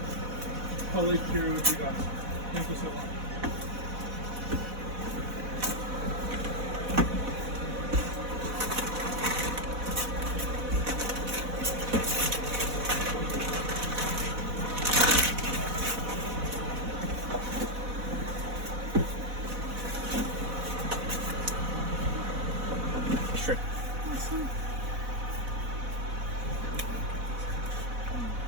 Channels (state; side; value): late; left; 4.1 ms